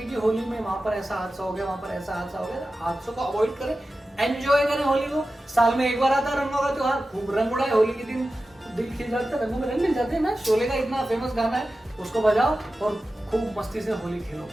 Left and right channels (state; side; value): normal; both; correlation 0.93